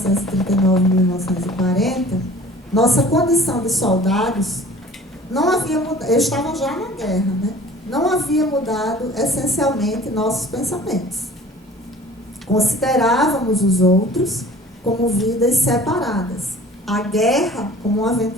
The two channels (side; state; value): both; normal; correlation 0.47